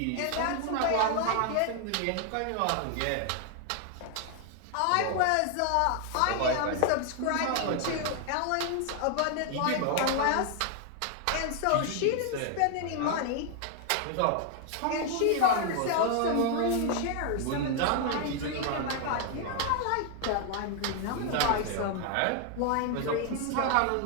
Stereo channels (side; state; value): both; different; correlation 0.00